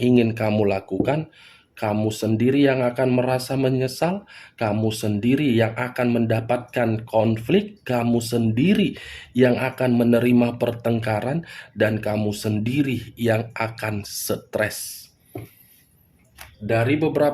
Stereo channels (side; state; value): both; identical; correlation 1.00